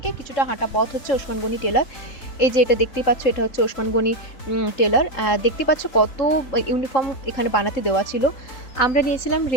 কিছুটা হাঁটা পথ হচ্ছে ওসমান গনি টেলার। এই যে এটা দেখতেই পাচ্ছ, এটা হচ্ছে ওসমান গনি টেলার। দেখতে পাচ্ছ কত ইউনিফর্ম এখানে বানাতে দেওয়া ছিল। আমরা নিয়েছিলাম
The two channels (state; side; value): late; right; 4.0 ms